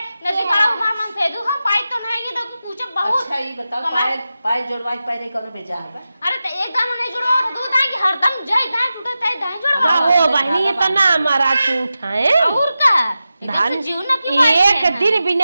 नदी बड़ा मामन से दू हम पाई तो नहीं ये तो पूछ बहुत अच्छा ये बताओ कमाल। पाए जोड़वाई पाए कब बेचा है अरे तो एकदम नहीं जुड़ो दूध आई कि हरदम जय दाई टूटे तय दाई जुड़ो का हो बहनी ये तो ना हमारा झूठ है और का धान जीव ना की एक दिन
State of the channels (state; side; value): inverted; both; correlation -0.93